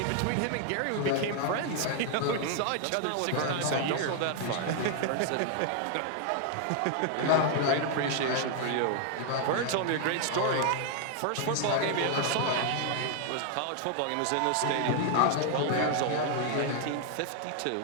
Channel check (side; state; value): both; different; correlation 0.00